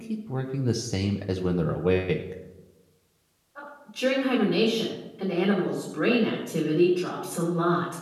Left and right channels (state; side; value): identical; both; correlation 1.00